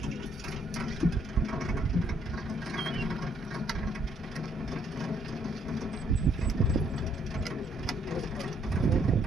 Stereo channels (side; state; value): both; normal; correlation 0.68